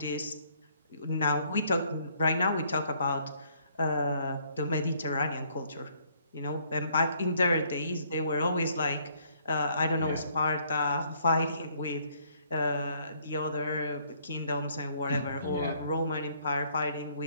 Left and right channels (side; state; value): both; inverted; correlation -0.65